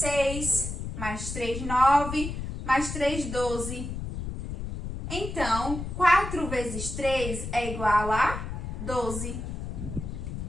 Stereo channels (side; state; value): left; noise; rumble, 6 dB below the sound